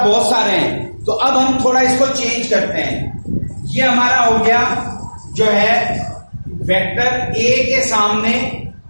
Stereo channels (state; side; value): inverted; both; correlation -1.00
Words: बहुत सारे हैं, तो अब हम थोड़ा इसको चेंज करते हैं। ये हमारा हो गया जो है वेक्टर ए के सामने,